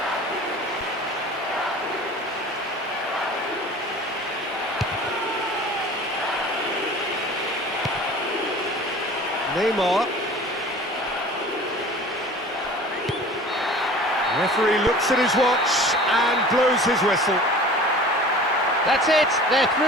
Neymar. Referee looks at his watch and blows his whistle. That's it, they're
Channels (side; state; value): both; normal; correlation 0.42